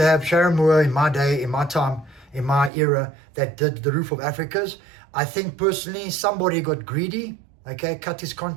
have Sharon Moore in my day, in my time, in my era that did the Roof of Africas. I think personally somebody got greedy, okay, cut his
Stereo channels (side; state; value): left; drops out; at 2.7 s